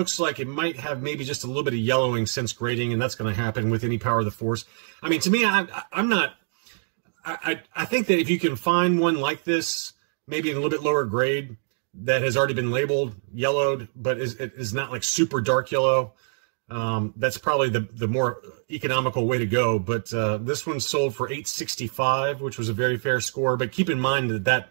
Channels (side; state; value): left; silent; digital silence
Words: like it might have maybe just a little bit of yellowing since grading, and that's going to happen with any Power of the Force. I mean, to me, I think that if you can find one like this, maybe in a little bit lower grade, that has already been labeled yellowed, but is not like super dark yellow, that's probably the more economical way to go. But this one sold for $865, which was a very fair score. But keep in mind that